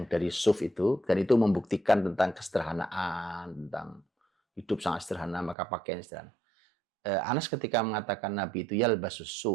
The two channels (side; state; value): left; drops out; at 5.6 s